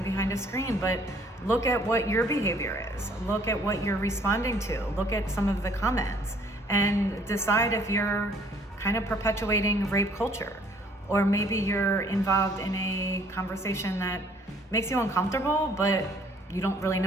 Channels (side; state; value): both; normal; correlation 0.60